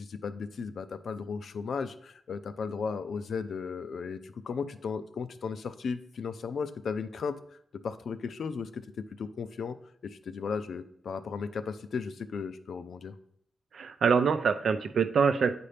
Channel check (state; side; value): normal; both; correlation 0.78